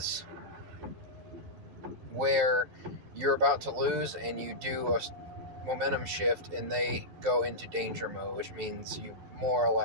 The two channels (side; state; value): left; late; 11 ms